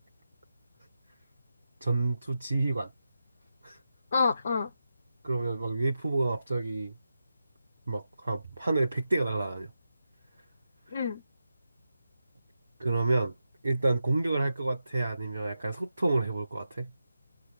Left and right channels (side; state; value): both; inverted; correlation -0.89